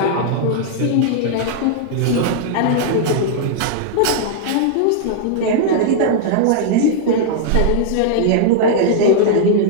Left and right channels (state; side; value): different; both; correlation -0.01